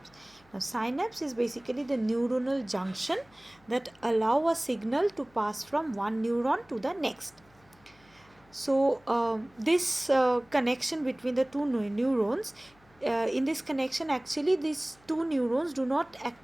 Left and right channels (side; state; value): left; noise; hum, 30 dB below the sound